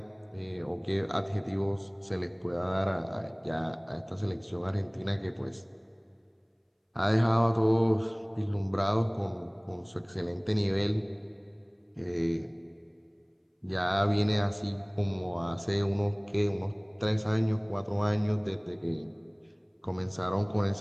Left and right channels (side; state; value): both; identical; correlation 1.00